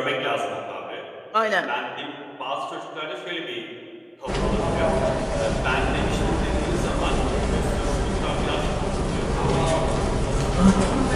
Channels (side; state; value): both; identical; correlation 1.00